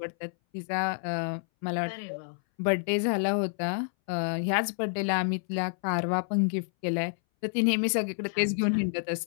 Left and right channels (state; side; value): silent; right; 59 dB below the other